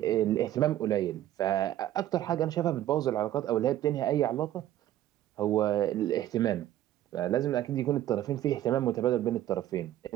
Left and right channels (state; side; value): quieter; left; 13.0 dB